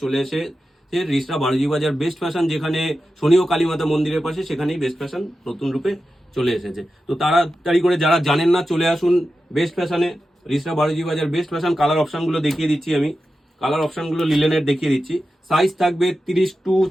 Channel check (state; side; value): normal; both; correlation 0.92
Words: চলে এসে রিসরা বারোজি বাজার বেস্ট ফ্যাশন, যেখানে শনি ও কালীমাতা মন্দিরের পাশে, সেখানেই বেস্ট ফ্যাশন নতুন রূপে চলে এসেছে। তো তাড়াতাড়ি করে যারা জানেন না চলে আসুন বেস্ট ফ্যাশনে, রিসরা বারোজি বাজার বেস্ট ফ্যাশন। কালার অপশনগুলো দেখিয়ে দিচ্ছি আমি, কালার অপশনগুলো লিলেনের দেখিয়ে দিচ্ছি। সাইজ থাকবে 30 টু